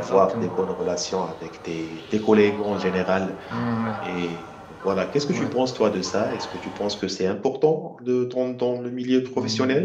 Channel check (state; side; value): identical; both; correlation 1.00